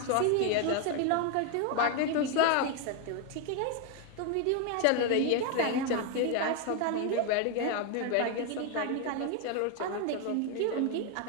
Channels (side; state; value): both; different; correlation 0.01